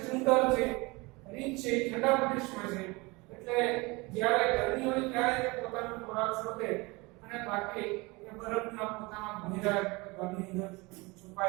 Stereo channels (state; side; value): quieter; left; 25.0 dB